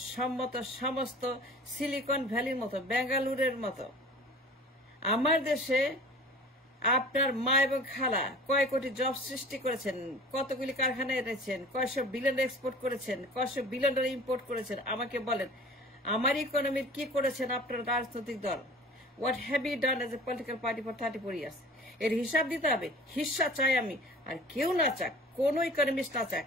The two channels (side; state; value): both; normal; correlation 0.43